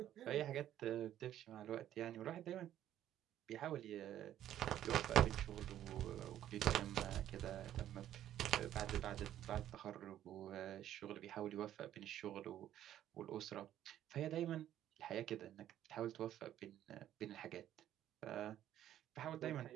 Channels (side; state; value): left; quieter; 11.8 dB